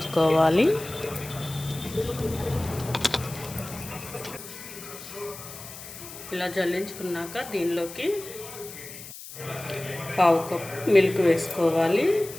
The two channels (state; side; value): noise; left; hiss, 13 dB below the sound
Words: ఇలా జల్లించుకున్నాక దీనిలోకి 1/2 కప్పు మిల్క్ వేసుకోవాలి.